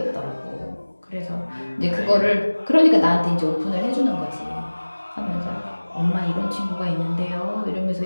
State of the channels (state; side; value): inverted; both; correlation -1.00